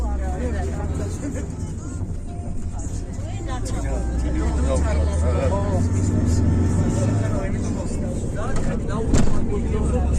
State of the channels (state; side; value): identical; both; correlation 1.00